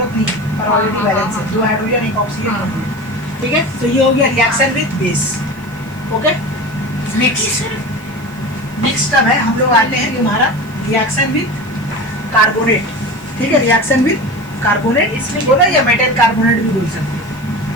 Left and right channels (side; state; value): right; noise; hiss, 26 dB below the sound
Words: नहीं है, पर ऑलरेडी हाँ, बैलेंस है, हाँ, 2 हाइड्रोजन 1 ऑक्सीजन। हाँ। ठीक है, तो ये हो गया reaction with base. Okay, next अब है, हम लोग आते हैं तुम्हारा रिएक्शन विद कार्बोनेट। ठीक है, रिएक्शन विद कार्बोनेट इसमें बोला, या मेटल कार्बोनेट भी बोल सकते हैं,